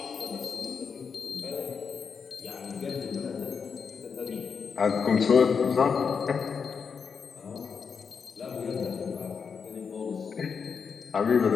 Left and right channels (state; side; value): quieter; right; 6.0 dB